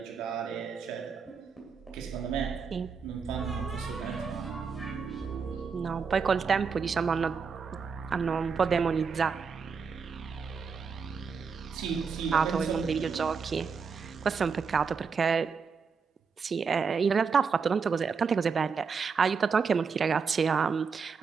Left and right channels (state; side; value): quieter; left; 5.6 dB